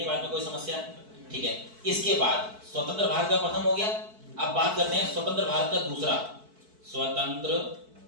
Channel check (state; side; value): late; left; 4.6 ms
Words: बात में कोई समस्या? ठीक है। इसके बाद स्वतंत्र भारत का प्रथम हो गया। अब बात करते हैं स्वतंत्र भारत का दूसरा। स्वतंत्र